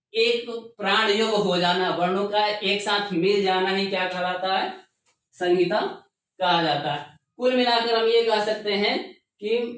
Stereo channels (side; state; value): both; identical; correlation 1.00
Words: एक प्राण योग हो जाना, वर्णों का एक साथ मिल जाना ही क्या कहलाता है? संहिता कहा जाता है। कुल मिलाकर हम ये कह सकते हैं कि